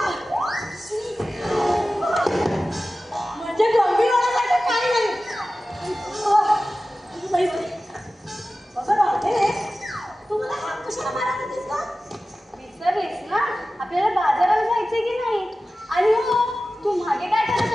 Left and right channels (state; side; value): normal; both; correlation 0.95